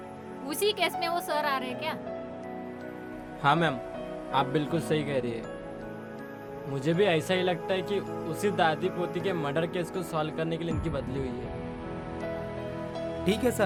उसी केस में वो सर आ रहे हैं क्या? हाँ मैम, आप बिल्कुल सही कह रही है। मुझे भी ऐसा ही लगता है कि उसी दादी पोती के मर्डर केस को सॉल्व करने के लिए इनकी बदली हुई है। ठीक है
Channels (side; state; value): both; identical; correlation 1.00